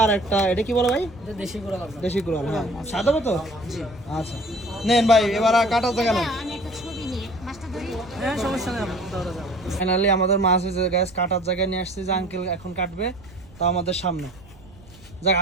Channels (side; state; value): right; noise; rumble, 23 dB below the sound